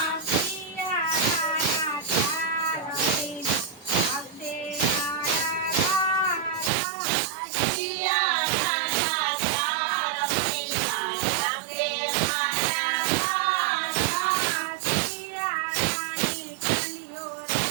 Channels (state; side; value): drops out; left; at 6.7 s